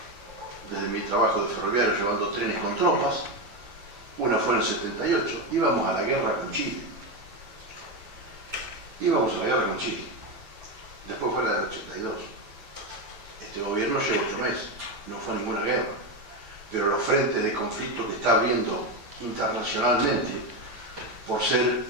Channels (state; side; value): late; left; 9.2 ms